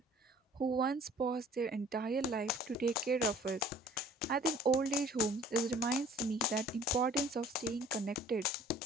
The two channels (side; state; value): both; normal; correlation 0.51